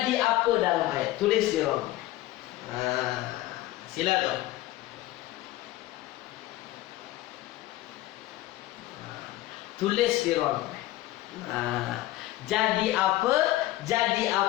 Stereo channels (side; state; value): right; quieter; 16.1 dB